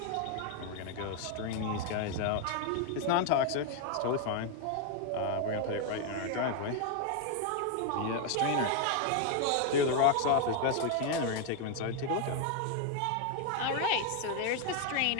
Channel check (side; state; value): both; different; correlation 0.01